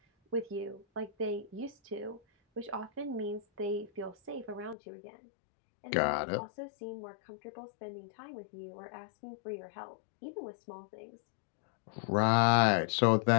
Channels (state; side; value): drops out; right; at 4.8 s